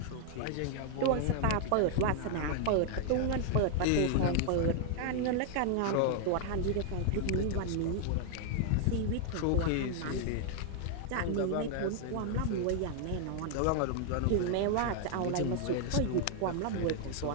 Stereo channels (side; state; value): both; different; correlation 0.00